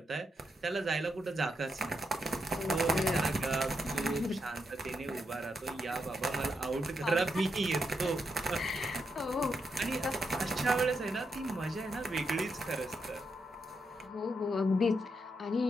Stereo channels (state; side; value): normal; both; correlation 0.82